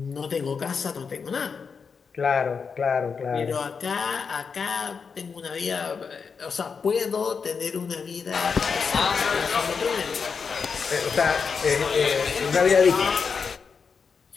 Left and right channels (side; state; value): right; quieter; 5.7 dB